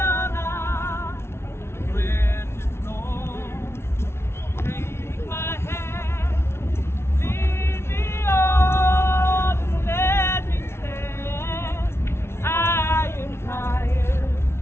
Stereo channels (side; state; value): right; late; 0.12 ms